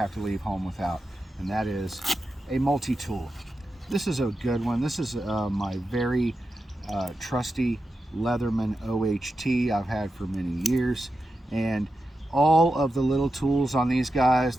to leave home without, and that is a multi-tool. This is a good one. This is my very trusty Leatherman OHT I've had for many years, and all of the little tools on these guys,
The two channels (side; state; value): both; normal; correlation 0.90